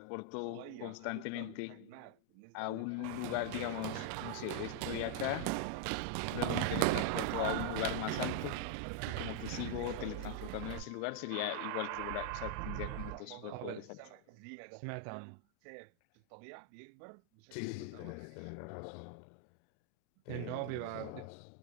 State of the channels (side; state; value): both; different; correlation 0.00